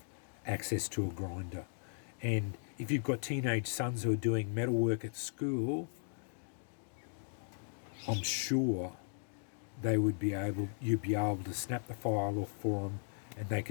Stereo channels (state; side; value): silent; right; digital silence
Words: access to a grinder. And if you've got teenage sons who are doing metalwork at school, I'm sure you'd be able to snap the file off for them, and they